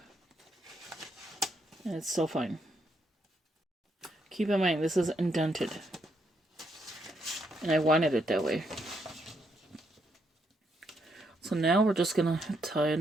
And it's still fine. Keep in mind, this is indented. And I wanted it that way. So now we're just gonna tie a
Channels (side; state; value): both; normal; correlation 0.77